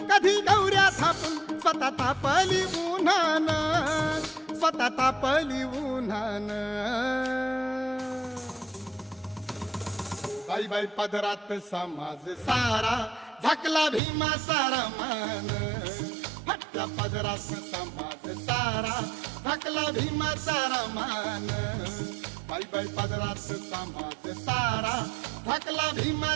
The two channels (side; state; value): left; drops out; at 14.0 s